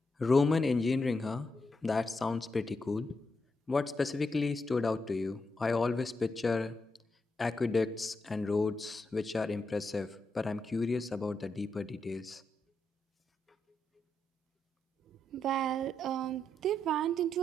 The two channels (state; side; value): normal; both; correlation 0.83